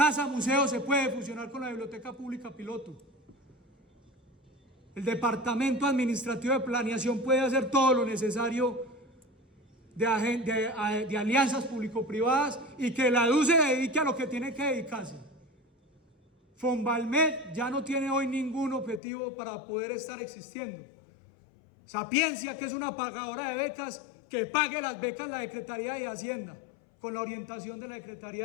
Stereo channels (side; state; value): right; drops out; at 19.0 s